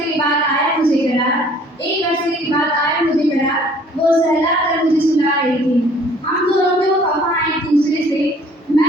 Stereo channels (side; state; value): both; normal; correlation 0.55